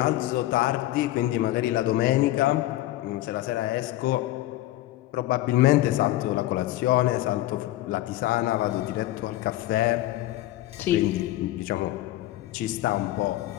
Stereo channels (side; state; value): right; quieter; 15.7 dB